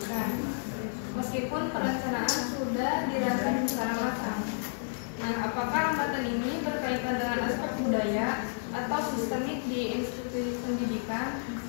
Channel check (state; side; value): silent; right; 57 dB below the other